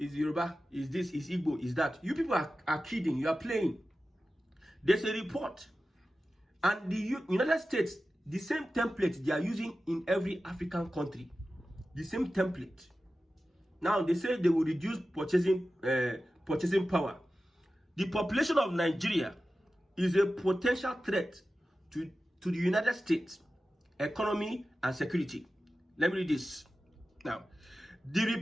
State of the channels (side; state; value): both; normal; correlation 0.94